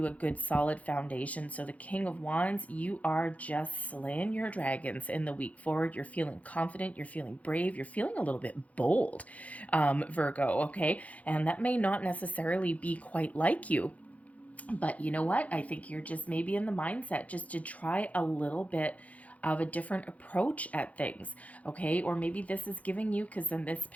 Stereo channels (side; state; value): right; late; 0.068 ms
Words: a good solid foundation. So the King of Wands, you are just slaying your dragons in the week forward. You're feeling confident, you're feeling brave, you're feeling a little bit bold, Virgo, okay? And that may not necessarily be quite like you. But you know what? I think you're just maybe in the mindset just to try a little bit of a different approach at things, okay? Or maybe this is giving you, because in this